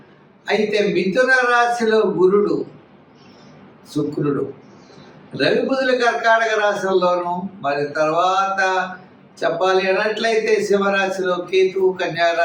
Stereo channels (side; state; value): both; identical; correlation 1.00